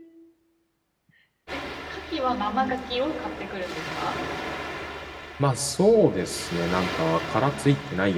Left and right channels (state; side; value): identical; both; correlation 1.00